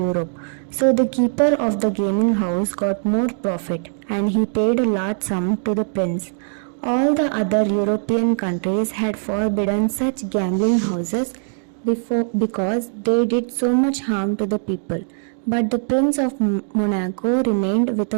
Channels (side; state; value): left; silent; digital silence